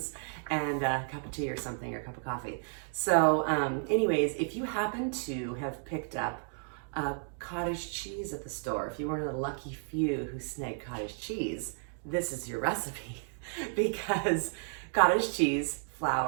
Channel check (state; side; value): silent; left; 56 dB below the other